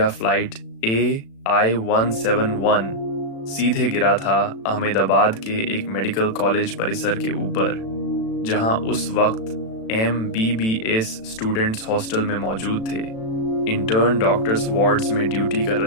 फ्लाइट AI-171 सीधे गिरा था अहमदाबाद के एक मेडिकल कॉलेज परिसर के ऊपर, जहां उस वक्त MBBS स्टूडेंट्स हॉस्टल में मौजूद थे। इंटर्न डॉक्टर्स वार्ड्स में ड्यूटी कर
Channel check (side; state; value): right; late; 36 ms